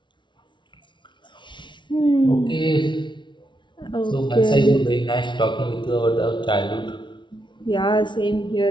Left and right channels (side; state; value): right; late; 0.23 ms